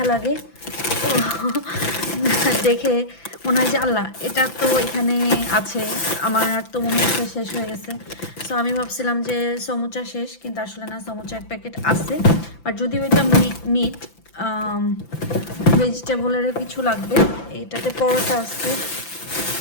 লাগে। তো দেখে মনে হয় যে আল্লাহ এটা তো এখানে আছে, আমার আর তো মনে হচ্ছে শেষ হয়ে গেছে। সো আমি ভাবছিলাম যে সমুচা শেষ, কিন্তু আসলে না, সমুচার প্যাকেট আছে। আর যদি ওইটা মিট ভেজিটেবলেরও কিছু লাগবে। এটাতে পরোটা আছে,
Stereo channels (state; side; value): late; right; 5.9 ms